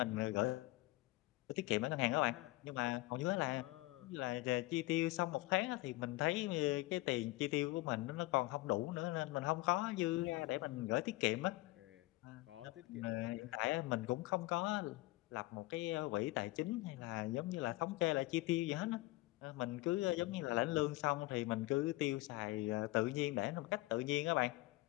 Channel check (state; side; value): quieter; right; 20.2 dB